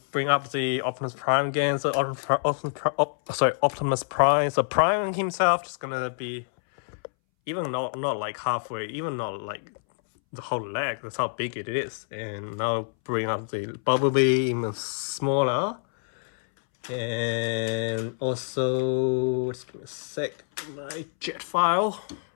Bring up the Optimus Prime again. So Optimus Prime. So Prime himself just gonna be even not like halfway, even not like the whole leg. That's how big it is. And now bring up the Bumblebee even smaller. And also, just give me a sec, my jet file.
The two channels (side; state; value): right; silent; 60 dB below the other